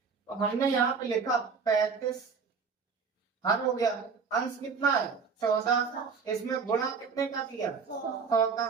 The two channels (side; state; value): left; quieter; 5.5 dB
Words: हमने यहाँ पे लिखा 35 हर हो गया, अंश कितना है 14, इसमें गुणा कितने का किया 100